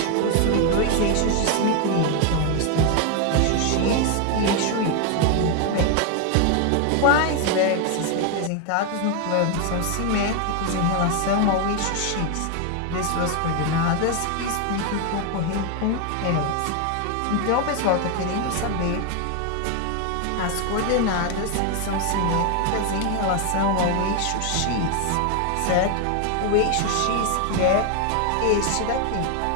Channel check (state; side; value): different; both; correlation 0.01